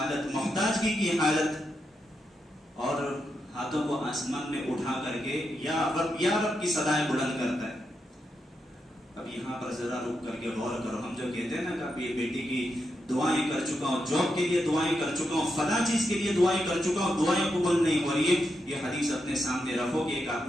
محتاجگی کی حالت، اور ہاتھوں کو آسمان میں اٹھا کر کے یا رب کی صدائیں بلند کرتا ہے. اب یہاں پر ذرا رک کر کے غور کرو. ہم جو کہتے ہیں نا کہ اب یہ بیٹی کی دعائیں کر چکا ہوں، جاب کے لیے دعائیں کر چکا ہوں، فلاں چیز کے لیے دعائیں کر چکا ہوں، دعائیں قبول نہیں ہو رہی ہے. یہ حدیث اپنے سامنے رکھو کہ ایک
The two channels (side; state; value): both; normal; correlation 0.85